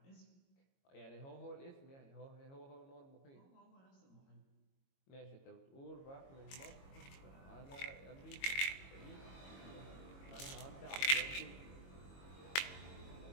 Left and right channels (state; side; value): late; right; 22 ms